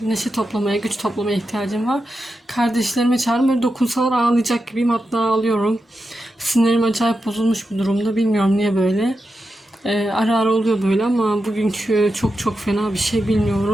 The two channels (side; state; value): both; normal; correlation 0.88